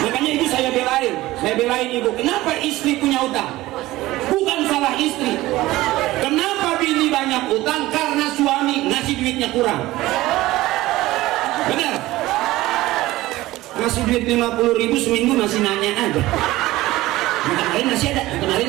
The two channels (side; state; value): left; quieter; 17.5 dB